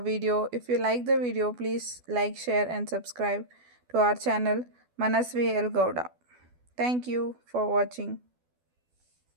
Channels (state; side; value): late; left; 12 ms